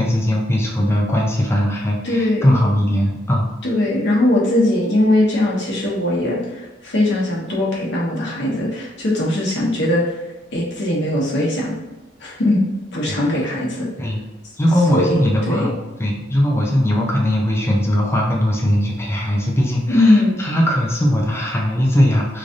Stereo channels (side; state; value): both; normal; correlation 0.80